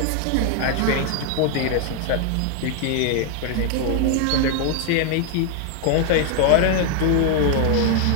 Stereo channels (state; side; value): different; both; correlation 0.00